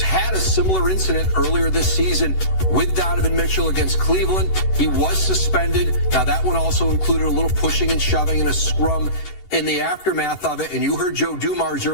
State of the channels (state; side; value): late; right; 11 ms